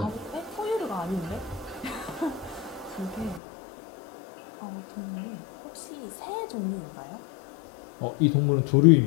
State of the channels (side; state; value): right; drops out; at 3.4 s